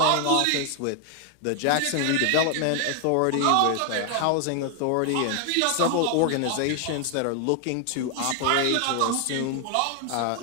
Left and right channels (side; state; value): both; different; correlation 0.00